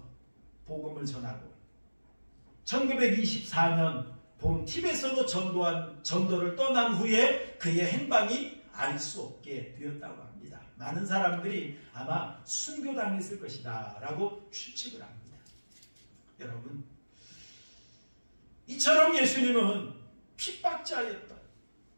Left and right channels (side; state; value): both; inverted; correlation -1.00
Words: 복음을 전하고 1924년 봄 티벳으로 전도를 떠난 후에 그의 행방이 알 수 없게 되었다고 합니다. 많은 사람들이 아마 순교당했을 것이다 라고 추측을 합니다. 여러분, 이처럼 예수님은 핍박자였던